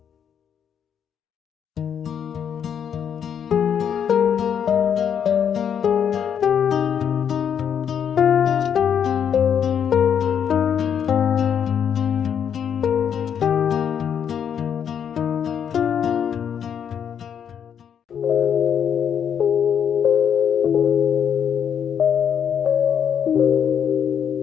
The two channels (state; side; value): quieter; right; 8.2 dB